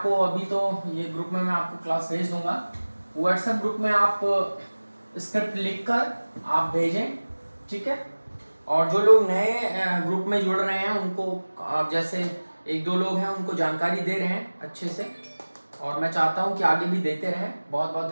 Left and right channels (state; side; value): inverted; both; correlation -1.00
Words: अभी तो ये ग्रुप में मैं आपको क्लास भेज दूंगा, व्हाट्सएप ग्रुप में आप स्क्रिप्ट लिखकर आप भेजें, ठीक है। और जो लोग नए ग्रुप में जुड़ रहे हैं उनको आप जैसे एक दो लोग हैं उनको जानकारी दे रहे हैं अच्छे से, और मैं चाहता हूं कि आगे भी देते रहें। बहुत बहुत